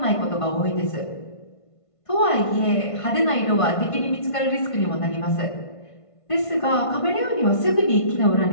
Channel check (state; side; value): late; right; 1.5 ms